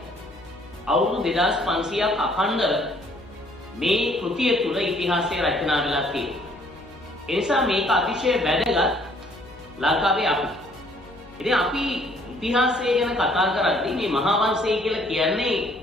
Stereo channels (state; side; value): noise; left; hum, 23 dB below the sound